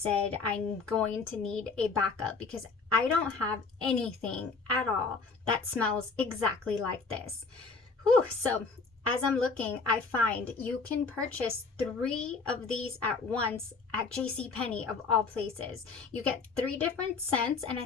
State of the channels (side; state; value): right; quieter; 4.4 dB